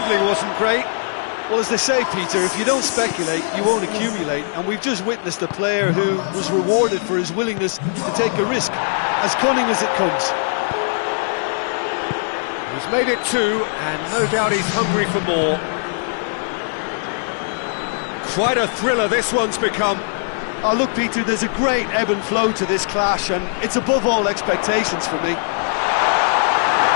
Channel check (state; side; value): silent; right; 66 dB below the other